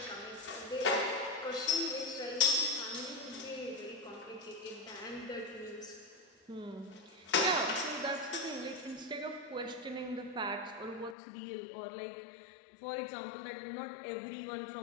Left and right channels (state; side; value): drops out; right; at 11.2 s